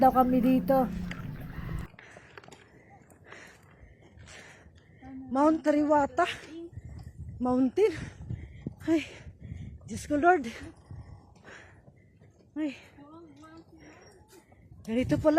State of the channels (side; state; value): both; identical; correlation 1.00